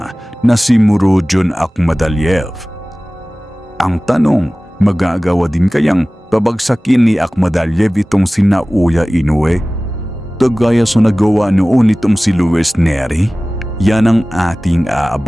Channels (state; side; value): normal; both; correlation 0.98